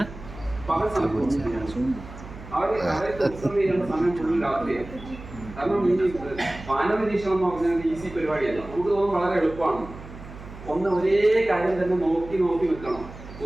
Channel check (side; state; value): right; noise; hum, 15 dB below the sound